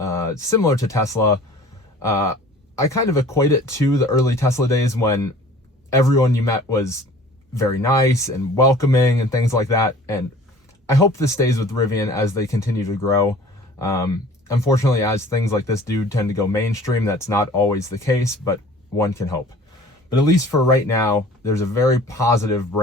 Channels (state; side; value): normal; both; correlation 0.47